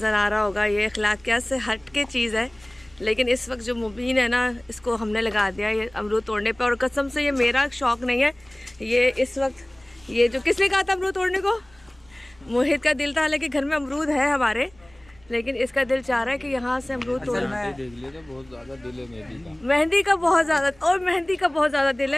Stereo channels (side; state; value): right; noise; rumble, 29 dB below the sound